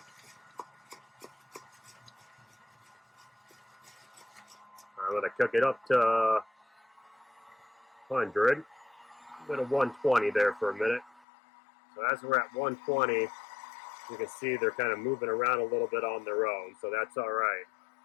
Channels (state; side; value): drops out; right; at 11.2 s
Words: I'm going to cook it up to 100. A bit of 120 there for a minute. So as we're at 120, you can see they're kind of moving around a little bit on their own, so that's all right.